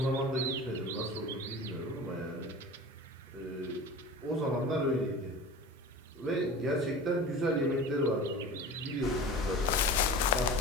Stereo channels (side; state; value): both; normal; correlation 0.35